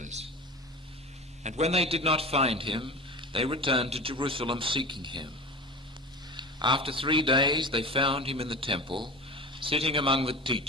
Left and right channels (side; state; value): both; normal; correlation 0.31